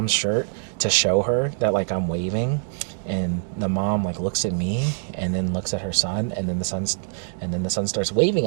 shirt to show her that like I'm waving, and the mom like looks at me and then looks at her son, and then the son starts waving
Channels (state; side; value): silent; left; digital silence